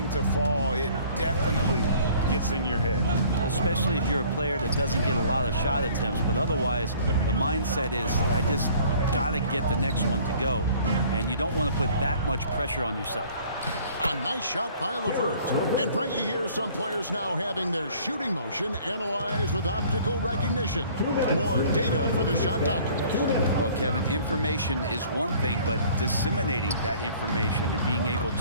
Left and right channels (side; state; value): both; inverted; correlation -0.53